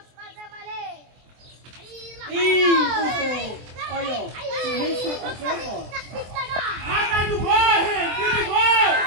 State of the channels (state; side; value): late; left; 24 ms